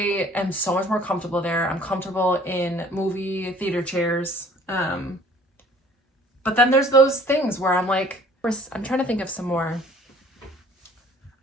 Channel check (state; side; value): normal; both; correlation 0.53